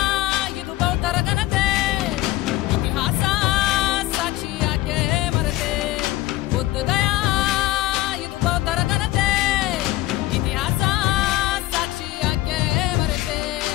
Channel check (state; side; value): quieter; right; 16.7 dB